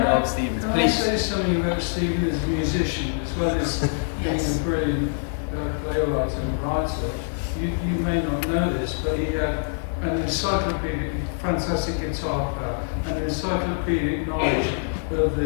of Stephen's. Can Please. I say something about Stephen as a musician, as well as being a brilliant playwright and writer? You may not know this, but he had an encyclopedic, fantastic guitar player, and an encyclopedic knowledge of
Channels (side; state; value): right; silent; digital silence